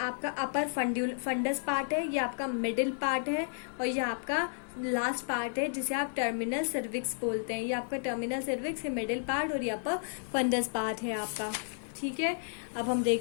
अपर फंडस पार्ट है, ये आपका मिडिल पार्ट है, और ये आपका लास्ट पार्ट है जिसे आप टर्मिनल सर्विक्स बोलते हैं। ये आपका टर्मिनल सर्विक्स है, मिडिल पार्ट, और ये अपर फंडस पार्ट है आपका, ठीक है। अब हम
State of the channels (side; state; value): right; silent; digital silence